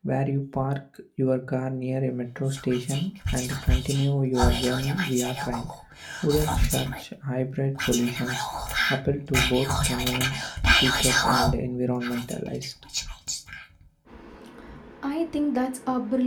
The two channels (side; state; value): both; identical; correlation 1.00